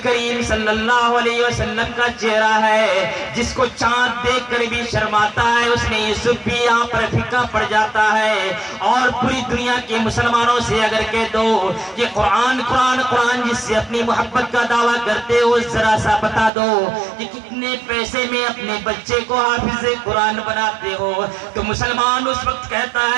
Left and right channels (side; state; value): left; drops out; at 16.5 s